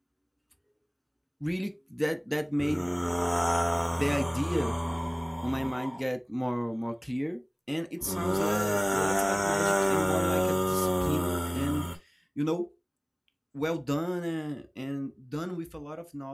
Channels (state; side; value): identical; both; correlation 1.00